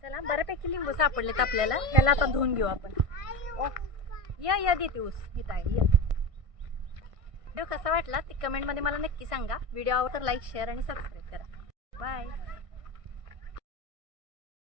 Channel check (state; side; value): late; left; 1.6 ms